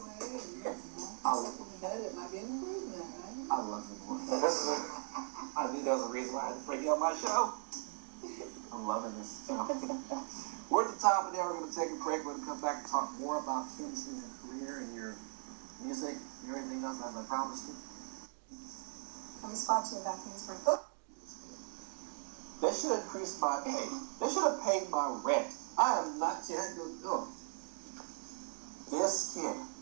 I love you, boy. I knew that was the reason why I had to bring you on my show. I'm loving this. We're at the top of the hour. We're going to take a break. We're going to come back and talk more about finishing your career and your music and everything else, as I promised you. Let me spot you back in spring. Oh. They should increase my pay. They should have paid my rent. I am not kidding. Oh. This kid.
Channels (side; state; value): left; silent; 52 dB below the other